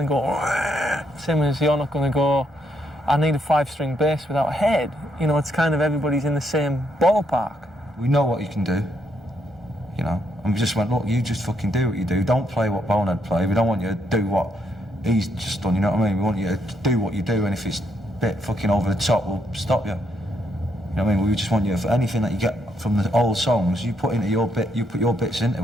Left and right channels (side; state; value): both; normal; correlation 0.75